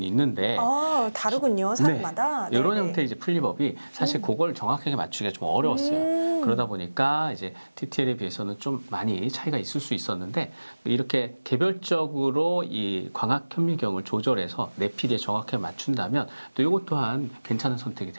있는데 다르군요, 사람마다. 네, 이런 네네. 형태의 이제 풀리법이 사실 그걸 정확하게 맞추기가 좀 어려웠어요. 그러다 보니까 이제 TTL에 비해서는 좀 많이 차이가 있을 수 있었는데 이렇게 개별적으로 이 광학 현미경을 조절해서 내 피디에 정확하게 맞춘다면 또 이것 또한 괜찮은 선택이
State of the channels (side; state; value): both; inverted; correlation -1.00